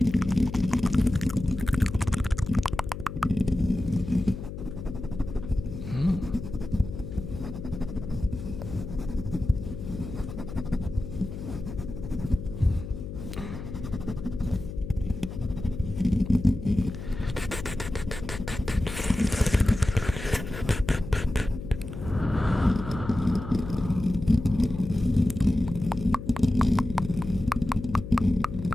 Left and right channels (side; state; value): left; noise; hum, 9 dB below the sound